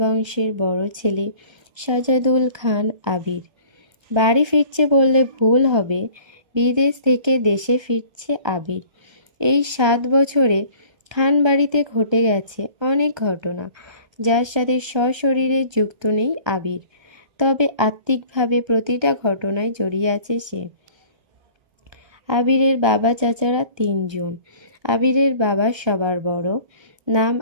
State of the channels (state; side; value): late; left; 1.3 ms